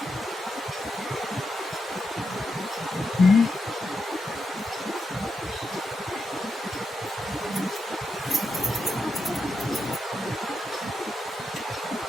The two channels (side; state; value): both; normal; correlation 0.85